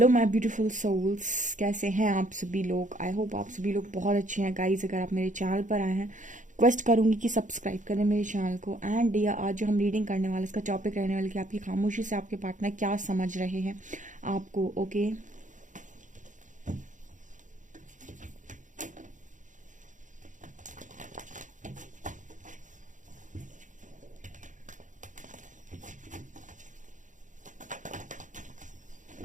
my beautiful souls, कैसे हैं आप सभी लोग। आई होप आप सभी लोग बहुत अच्छे हैं। गाइज, अगर आप मेरे चैनल पर आए हैं, रिक्वेस्ट करूंगी कि सब्सक्राइब करें मेरे चैनल को। एंड या आज जो हम रीडिंग करने वाले, इसका टॉपिक रहने वाला कि आपकी खामोशी से आपके पार्टनर क्या समझ रहे हैं आपको। ओके,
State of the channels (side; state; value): left; late; 0.37 ms